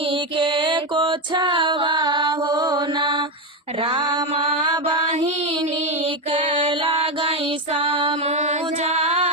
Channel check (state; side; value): normal; both; correlation 0.10